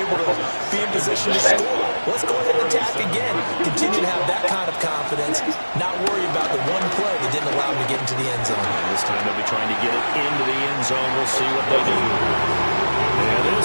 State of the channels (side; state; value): both; inverted; correlation -1.00